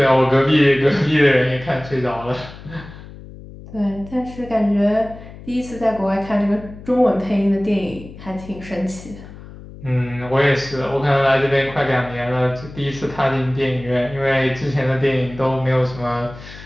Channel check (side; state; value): left; noise; hum, 16 dB below the sound